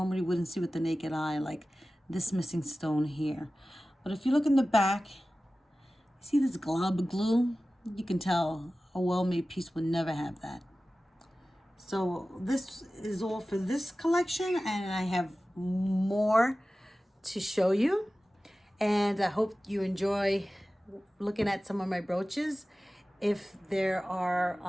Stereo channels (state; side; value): normal; both; correlation 0.96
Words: wouldn't see with the naked eye, like this missing stone here. But if you look in the back, see this glob of glue? You can tell a well-made piece would never have that. So this is all for this collection, and I have more to show you. And I hope you enjoy looking at some of my brooches. If there are